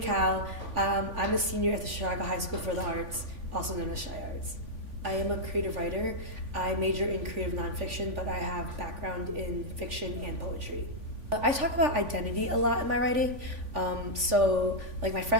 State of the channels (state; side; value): late; left; 3.5 ms